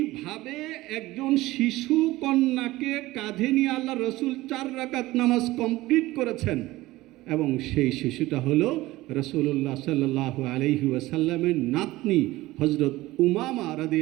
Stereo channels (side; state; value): left; quieter; 18.1 dB